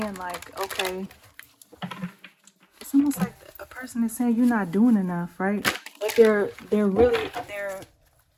like, okay, it's almost like a person is saying you're not doing enough, right? But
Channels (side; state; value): both; identical; correlation 1.00